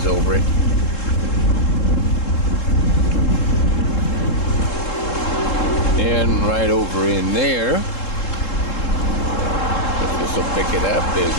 over it. And right over in there, if this will pick it up, is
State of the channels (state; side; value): late; right; 3.7 ms